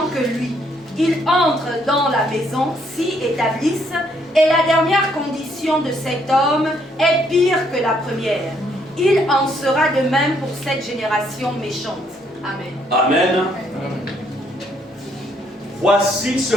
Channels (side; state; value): both; normal; correlation 0.70